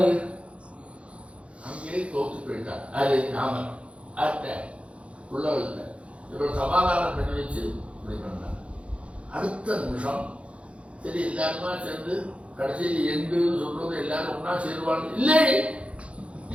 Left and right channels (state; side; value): late; left; 0.061 ms